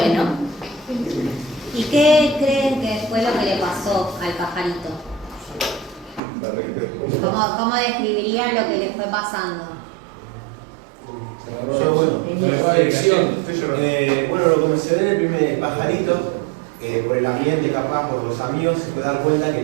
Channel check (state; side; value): drops out; left; at 6.2 s